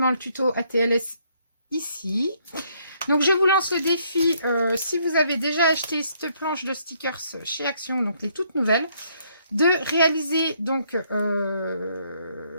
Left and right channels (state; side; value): inverted; both; correlation -0.69